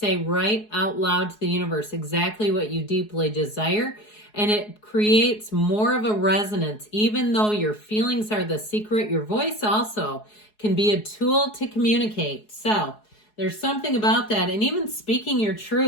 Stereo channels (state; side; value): late; right; 4.7 ms